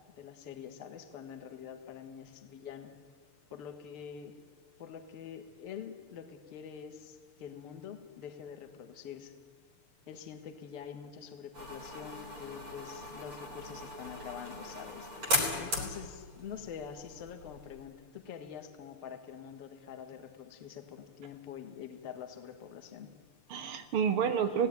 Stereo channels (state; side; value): late; left; 6.7 ms